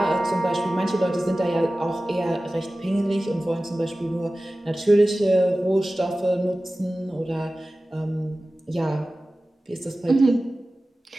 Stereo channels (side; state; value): both; normal; correlation 0.96